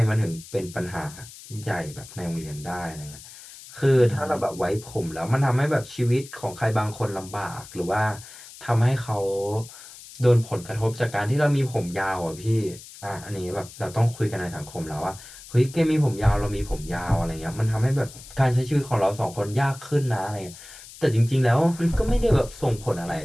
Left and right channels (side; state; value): left; noise; hiss, 17 dB below the sound